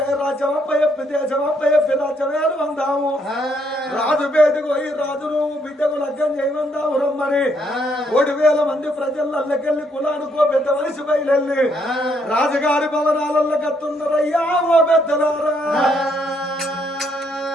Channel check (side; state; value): both; normal; correlation 0.72